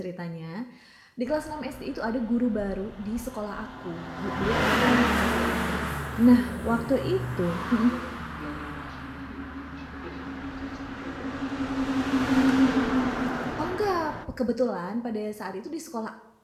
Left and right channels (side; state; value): both; identical; correlation 1.00